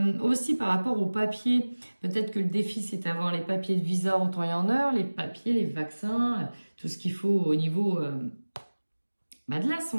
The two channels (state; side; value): inverted; both; correlation -1.00